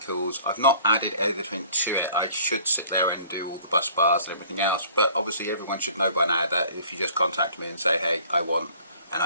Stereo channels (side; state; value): both; inverted; correlation -0.53